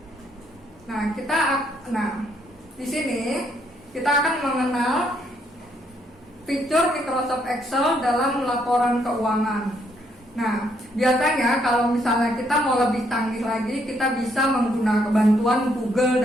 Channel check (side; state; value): both; normal; correlation 0.72